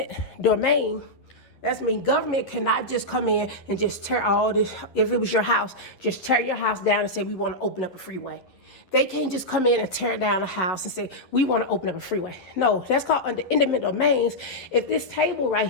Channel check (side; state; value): right; late; 10 ms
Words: domain, that's mean government cannot just come in and just tear all this. If it was your house, just tear your house down and say, we want to open up a freeway. They can't just come in and tear down a house and say, we want to open up a freeway. No, that's called under eminent domains. If this table right